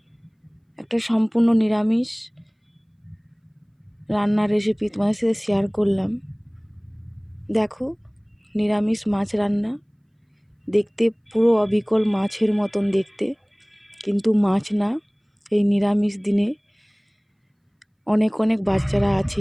একটা সম্পূর্ণ নিরামিষ রান্নার রেসিপি তোমাদের সাথে শেয়ার করলাম। দেখো, নিরামিষ মাছ রান্না। দেখতে পুরো অবিকল মাছের মতন দেখতে, কিন্তু মাছ না। এই নিরামিষ দিনে অনেক অনেক বাচ্চারা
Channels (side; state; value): both; identical; correlation 1.00